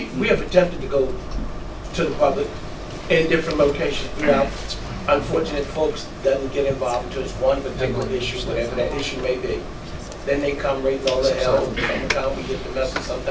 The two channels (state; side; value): identical; both; correlation 1.00